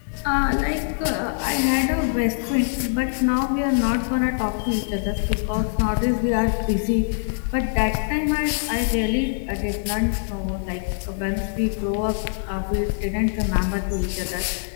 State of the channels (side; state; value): right; silent; digital silence